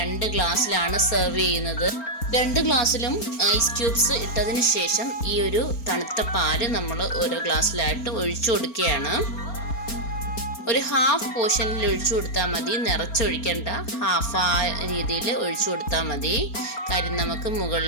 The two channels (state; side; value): late; right; 4.4 ms